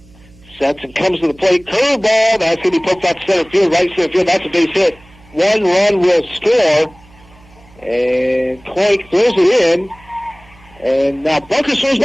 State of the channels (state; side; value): noise; right; hum, 26 dB below the sound